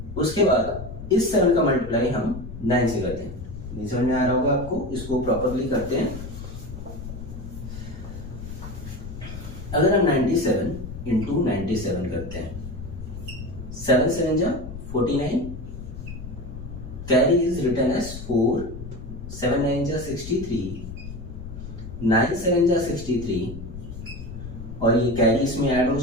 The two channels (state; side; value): noise; left; rumble, 10 dB below the sound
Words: उसके बाद इस 7 का मल्टीप्लाई हम 9 से करते हैं। नहीं समझ में आ रहा होगा आपको, इसको प्रॉपरली करते हैं। अगर हम 97 इंटू 97 करते हैं, 7 7 जा 49 कैरी इज रिटन एज 4, 7 9 जा 63, 9 7 जा 63 और ये कैरी इसमें ऐड हो